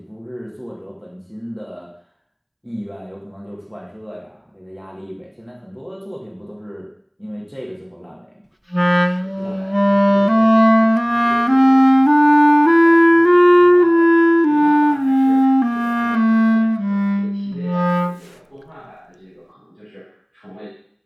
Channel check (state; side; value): identical; both; correlation 1.00